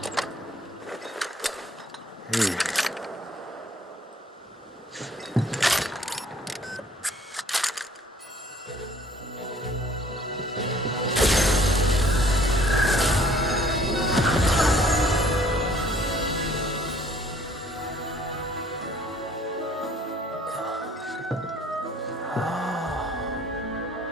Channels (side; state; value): both; normal; correlation 0.57